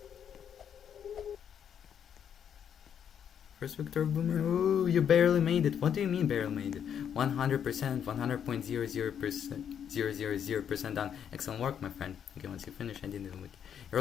First victor of Boomerang. Ooh, you barely made it. What do you mean barely made it? 100%, 100.00000% done. Excellent work, my friend. Okay, once you finish, I didn't even wiki. Your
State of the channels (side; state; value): right; quieter; 8.5 dB